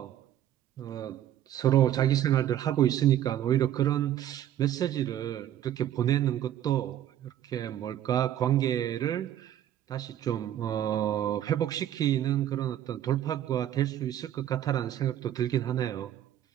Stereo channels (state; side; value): quieter; left; 11.6 dB